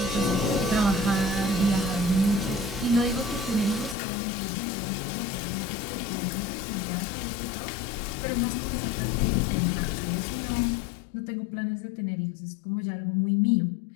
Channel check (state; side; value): drops out; right; at 4.0 s